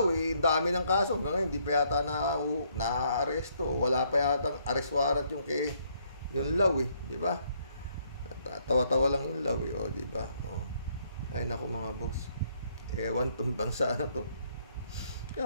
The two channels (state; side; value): inverted; both; correlation -0.70